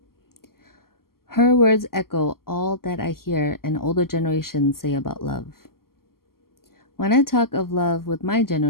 Her words echo all that I hear an older generation say about love. When I talk of love with my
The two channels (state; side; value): late; right; 0.92 ms